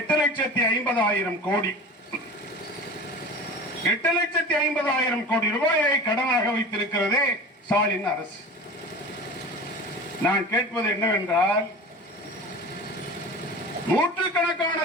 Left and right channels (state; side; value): normal; both; correlation 0.34